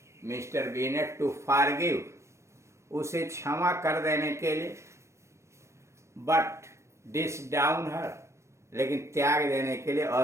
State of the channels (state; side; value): late; left; 0.13 ms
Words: Mr Bennet to forgive, उसे क्षमा कर देने के लिए, बट डिस डाउन हर, लेकिन त्याग देने के लिए,